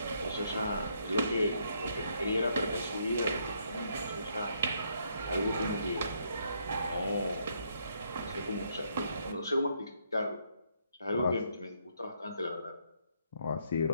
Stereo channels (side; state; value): both; inverted; correlation -0.73